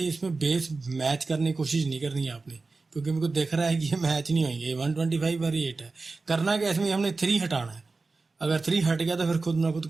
बेस मैच करने की कोशिश नहीं करनी है आपने, क्योंकि मेरे को दिख रहा है कि ये मैच नहीं होंगे, 125 और 8 है। करना क्या इसमें हमने 3 हटाना है, अगर 3 हट गया तो फिर खुद ना खुद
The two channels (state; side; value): quieter; left; 3.8 dB